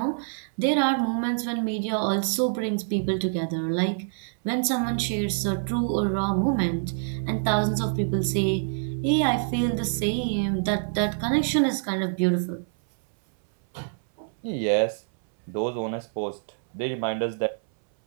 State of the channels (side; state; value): left; silent; 61 dB below the other